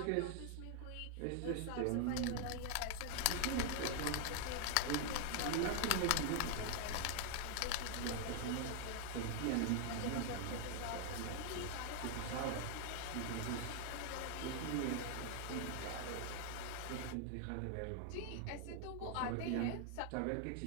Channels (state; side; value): different; both; correlation 0.00